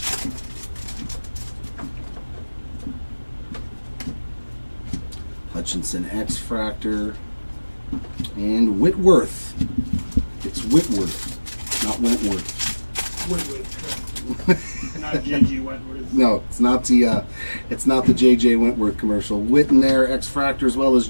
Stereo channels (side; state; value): both; inverted; correlation -1.00